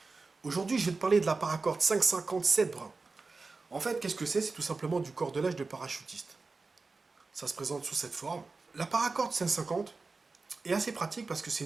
Aujourd'hui je vais te parler de la paracorde 557 brun. En fait qu'est-ce que c'est? C'est tout simplement du cordelage de parachutiste. Ça se présente sous cette forme. La paracorde 550 est assez pratique parce que c'est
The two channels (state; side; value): quieter; left; 4.0 dB